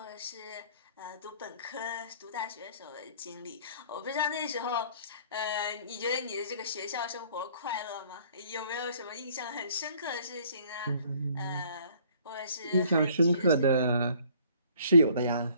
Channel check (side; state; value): both; inverted; correlation -0.58